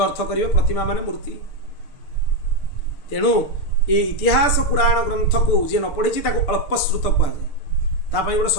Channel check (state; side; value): late; right; 6.7 ms